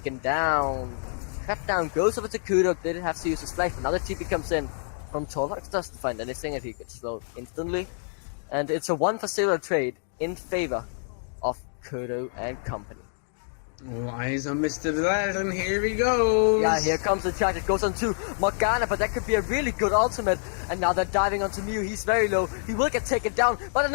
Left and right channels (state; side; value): silent; right; digital silence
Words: down. Cut down goes over to Kudo, didn't have to use his flash, but now the TP comes in from Torlux, doesn't find anything, and he gets slowed instantly. And it's a 1-for-0 trade in favor of Kudo and company. All eyes on Mr. Vlad, and here he goes! Yeah, here comes the charge. It goes on to Morgana, but that could be a really good ultimate. And now they're diving onto Mew. He's very low. He will get taken down, but